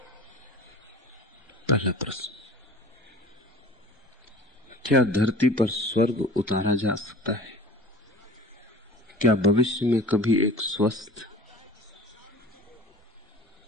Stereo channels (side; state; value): both; normal; correlation 0.42